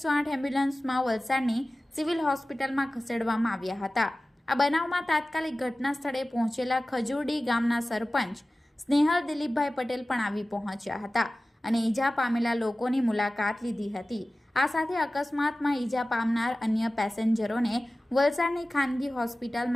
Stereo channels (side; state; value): both; normal; correlation 0.96